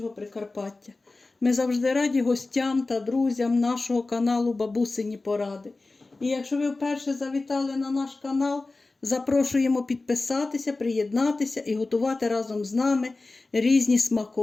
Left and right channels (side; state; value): right; quieter; 3.4 dB